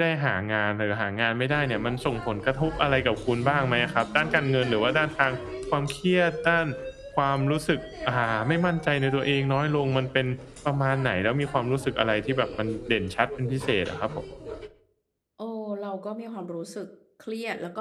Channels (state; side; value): identical; both; correlation 1.00